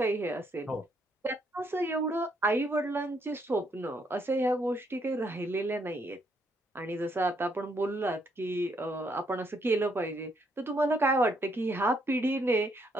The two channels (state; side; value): normal; both; correlation 0.72